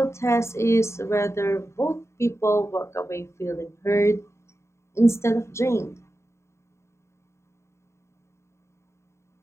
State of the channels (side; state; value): right; late; 0.13 ms